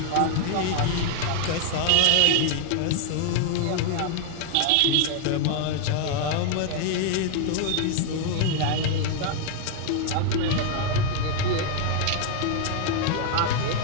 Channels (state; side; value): different; both; correlation 0.00